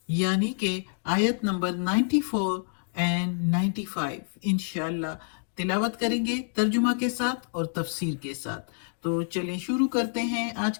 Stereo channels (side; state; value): right; silent; digital silence